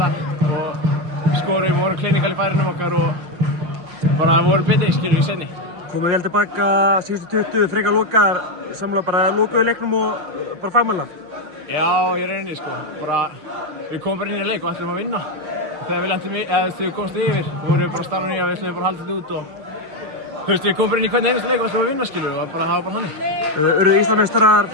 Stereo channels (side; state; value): left; late; 6.3 ms